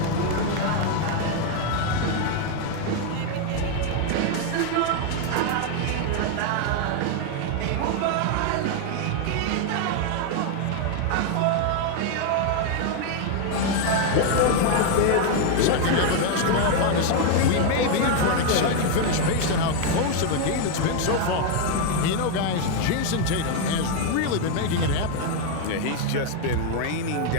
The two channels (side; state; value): both; different; correlation 0.01